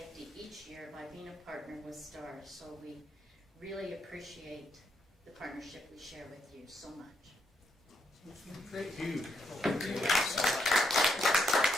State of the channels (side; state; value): both; normal; correlation 0.77